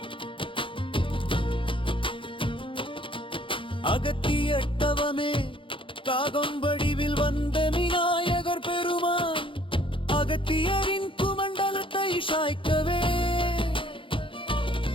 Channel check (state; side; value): late; right; 0.25 ms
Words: அகத்தியட்டவமே காகம் வடிவில் வந்த விநாயகர் பெருமான் அகத்தியரின் குமண்டலத்தை சாய்க்கவே.